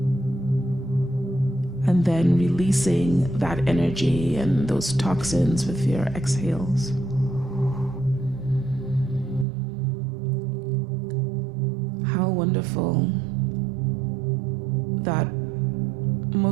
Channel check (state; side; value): drops out; left; at 9.5 s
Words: and then releasing that energy and those toxins with your exhales. How wonderful that